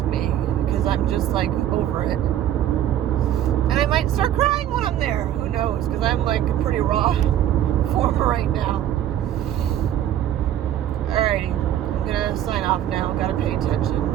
me because I'm just like over it. And I might start crying when I'm there. Who knows? Because I'm like a pretty raw form right now. Alrighty. I'm going to sign off now. Got to pay attention.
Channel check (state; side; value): quieter; left; 11.4 dB